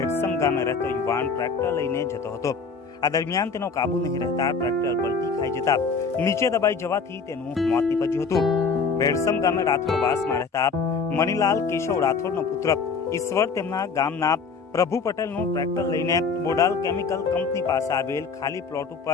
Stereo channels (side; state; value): right; quieter; 5.0 dB